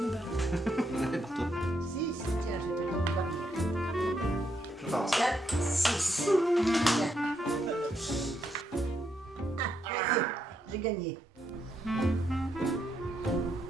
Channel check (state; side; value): normal; both; correlation 0.78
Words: barre. Ouais, pour toi. 6. Tiens, je te donne pas. Je pense. 4, 6. J'ai gagné.